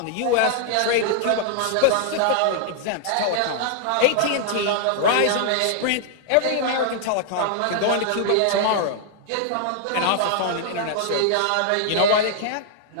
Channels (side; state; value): both; different; correlation -0.01